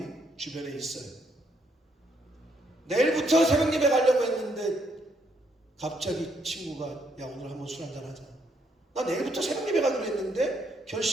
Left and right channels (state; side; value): normal; both; correlation 0.73